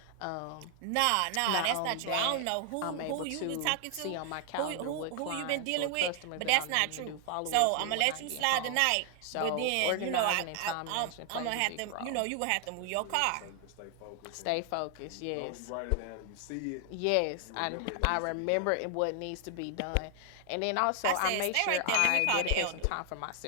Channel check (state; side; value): different; both; correlation 0.00